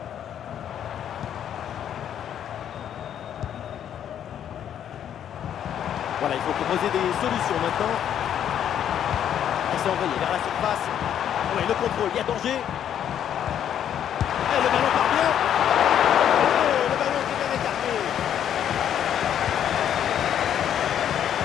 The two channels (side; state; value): right; quieter; 9.7 dB